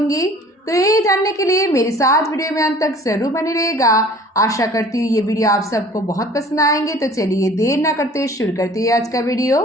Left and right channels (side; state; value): both; normal; correlation 0.49